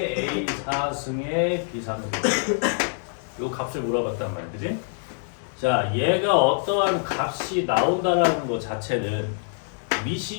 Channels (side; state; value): right; silent; digital silence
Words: A 4승의 B 3승 요 값을 물어봤단 말이야, 그지? 자, 얘가 어떠한 값이 나온다라는 것 자체는